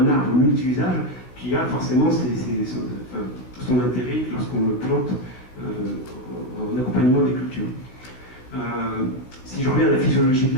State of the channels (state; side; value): late; right; 15 ms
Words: arbre multi-usage qui a forcément son intérêt lorsqu'on le plante en accompagnement des cultures. Si je reviens à la physiologie de